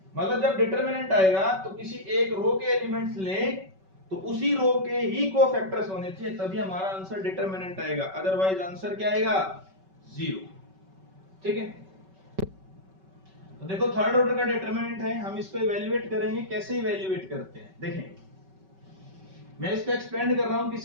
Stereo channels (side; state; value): left; late; 5.3 ms